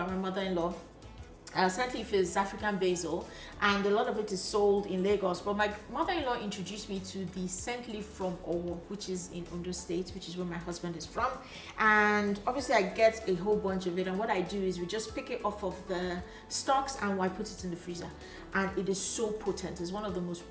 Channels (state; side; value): identical; both; correlation 1.00